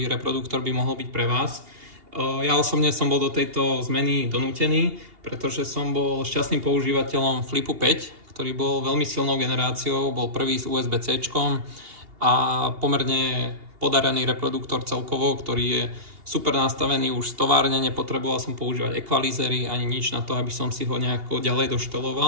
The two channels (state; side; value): late; left; 2.8 ms